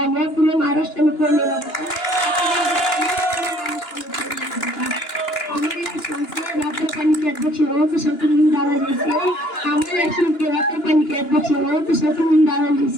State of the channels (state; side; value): late; right; 2.9 ms